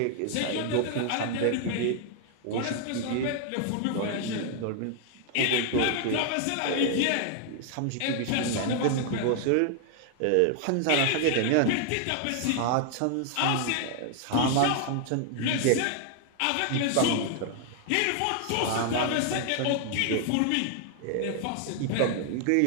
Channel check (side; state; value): both; different; correlation 0.00